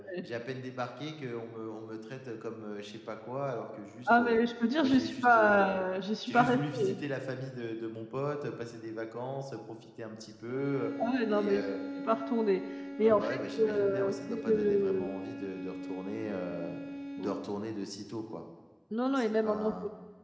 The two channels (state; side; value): identical; both; correlation 1.00